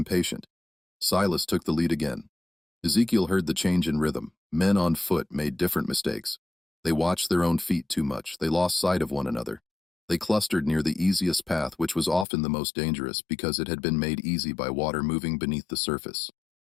Silas took the lead again. Ezekiel heard the change in rhythm. Men on foot made different mistakes. They watched their own feet too much. They lost sight of one another. They clustered near the easiest path, which was often the most dangerous because it had been made easy by water moving beneath the surface.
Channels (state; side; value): drops out; right; at 12.2 s